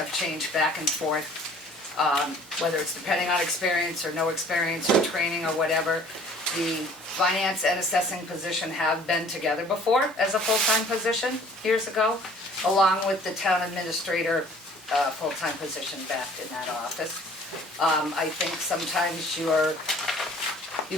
changed back and forth, whether it's depending on experience or no experience or training or whatever. The finance and assessing position have been together before as a full-time position years ago, along with the town administrator full-time position back in that office. I think sometimes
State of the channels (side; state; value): both; normal; correlation 0.52